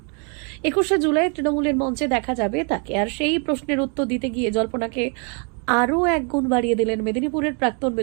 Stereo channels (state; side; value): quieter; left; 37.5 dB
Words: 21শে জুলাই তৃণমূলের মঞ্চে দেখা যাবে তাকে। আর সেই প্রশ্নের উত্তর দিতে গিয়ে জল্পনাকে আরও এক গুণ বাড়িয়ে দিলেন মেদিনীপুরের প্রাক্তন